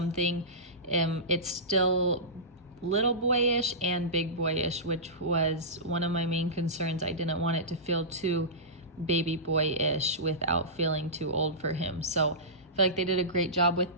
It's still little boyish and big boyish, which was one of my main concerns. I didn't want it to feel too baby boyish without feeling too old for him. So I feel like they did a great job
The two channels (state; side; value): normal; both; correlation -0.19